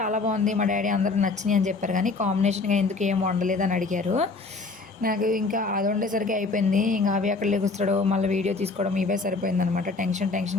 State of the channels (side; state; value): right; quieter; 3.8 dB